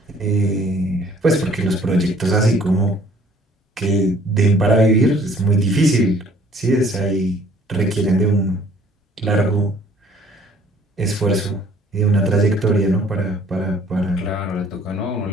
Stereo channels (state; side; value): normal; both; correlation 0.57